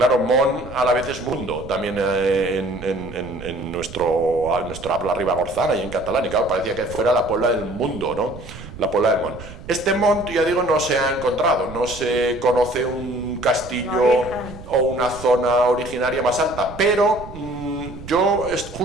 Mont a la vez es mundo, también en nuestra habla ribagorzana y en catalán, y claro, parecía que fuera la Puebla del mundo, ¿no? La Puebla del Mont. Este Mont, ya digo, no se ha encontrado, no se conoce un castillo o una zona originaria más alta, pero yo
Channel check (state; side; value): noise; right; rumble, 14 dB below the sound